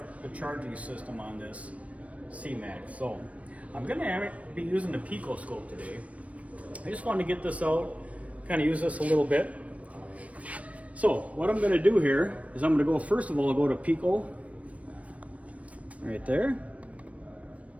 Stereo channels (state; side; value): late; left; 0.066 ms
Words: the charging system on this C-Max. So I'm going to be using the PICO Scope today. I just wanted to get this out, kind of use this a little bit. So what I'm going to do here is I'm going to go, first of all, I'll go to PICO right there.